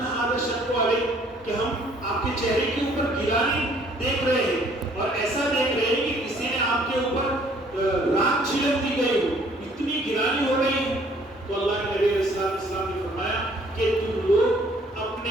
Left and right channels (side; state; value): both; normal; correlation 0.60